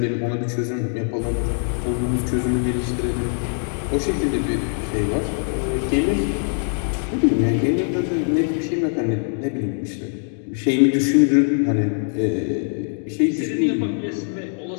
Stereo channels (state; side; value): silent; right; 64 dB below the other